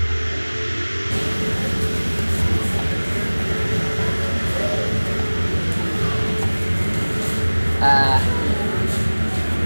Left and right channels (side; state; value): both; inverted; correlation -1.00